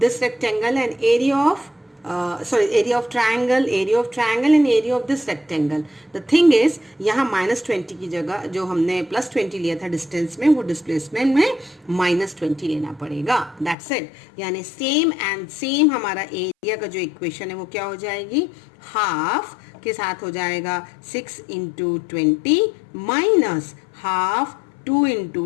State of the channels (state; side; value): drops out; right; at 13.8 s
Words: rectangle and area of area of triangle and area of this rectangle. The thing is यहाँ -20 की जगह जो हमने +20 लिया था डिस्टेंस में, वो डिस्प्लेसमेंट में -20 लेना पड़ेगा, that's it। यानी सेम एंड सेम हमारा एरिया का जो इक्वेशन है वो क्या हो जाएगी, हाफ के साथ हो जाएगा 6 × 20 माइनस हाफ 2